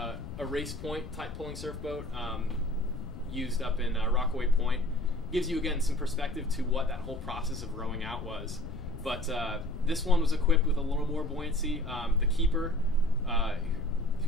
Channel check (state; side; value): noise; left; rumble, 11 dB below the sound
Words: Race Point type pulling surf boat used up in Rockaway Point. Gives you again some perspective to what that whole process of rowing out was. But this one was equipped with a little more buoyancy. The keeper,